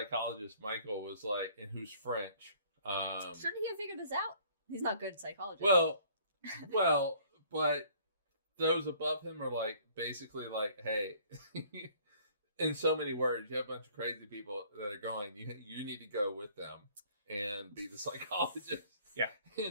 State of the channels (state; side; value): inverted; both; correlation -0.57